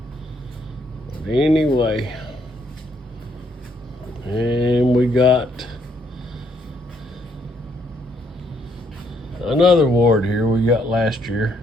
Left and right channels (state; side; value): normal; both; correlation 0.71